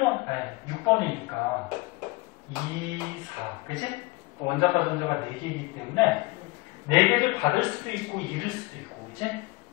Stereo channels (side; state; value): right; quieter; 23.1 dB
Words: 아니, 6번이니까 2, 4, 그지? 원자과 전자가 4개이기 때문에 4개를 받을 수도 있고 잃을 수도 있고, 그지?